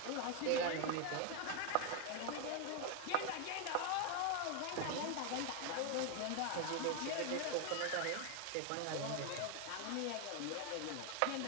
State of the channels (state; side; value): different; both; correlation 0.01